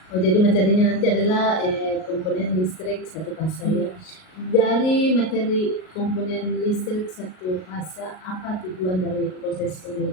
Oh, jadi materinya nanti adalah komponen listrik satu fasa ya. Dari materi komponen listrik satu fasa, apa tujuan dari proses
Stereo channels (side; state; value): right; late; 38 ms